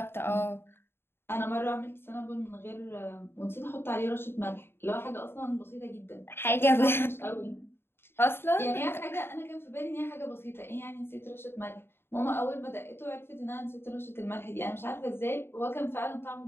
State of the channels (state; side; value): late; right; 0.11 ms